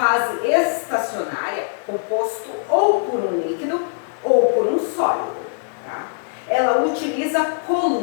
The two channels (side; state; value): right; silent; digital silence